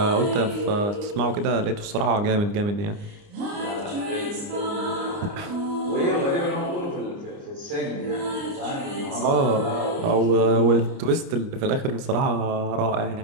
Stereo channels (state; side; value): late; left; 29 ms